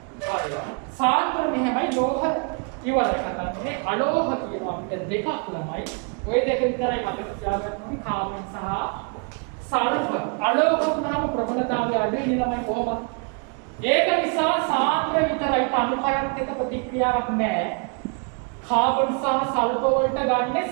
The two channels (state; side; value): quieter; left; 37.2 dB